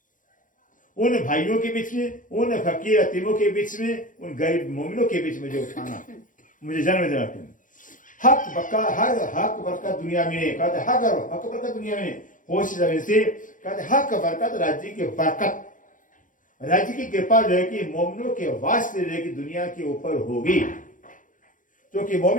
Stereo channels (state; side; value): late; right; 0.38 ms